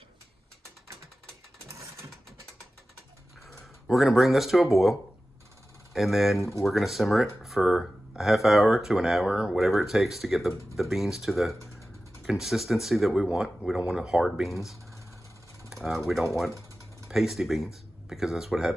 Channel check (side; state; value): both; normal; correlation 0.95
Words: We're going to bring this to a boil, and then we're going to simmer it for a half hour to an hour, whatever it takes to get the beans to the consistency that we want. We don't want hard beans. We don't want pasty beans, because that's what